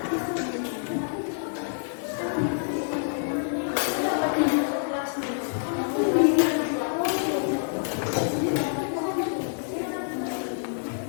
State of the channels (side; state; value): right; silent; 60 dB below the other